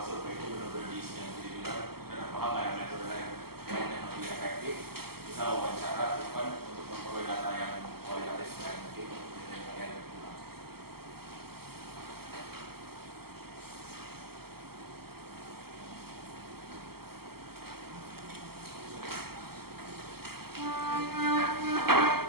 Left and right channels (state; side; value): late; left; 0.95 ms